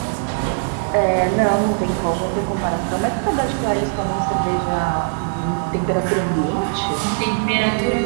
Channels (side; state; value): left; silent; digital silence